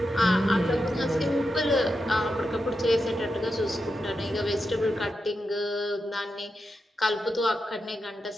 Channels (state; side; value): normal; both; correlation 0.88